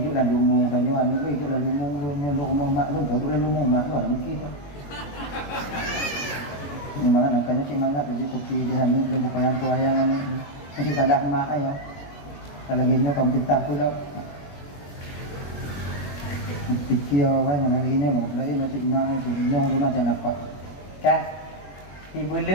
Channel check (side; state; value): right; late; 21 ms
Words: dalam lumung tanya anu hidup dalam lumung lu rumah mak lu baru dalam rumah mak lu ada mungkin tu. Memang nangkanya semangat aja kopi di hamil belum payang kuayangan ni. Mesti salah mak ayah. Kalau gini kau pintar tu dah. Pikir orang yang lagi ni lagi macam mak tu nyong tu macam apa. Kan? 3